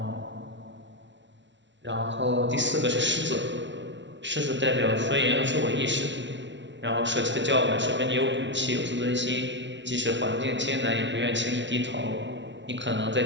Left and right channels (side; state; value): left; late; 0.53 ms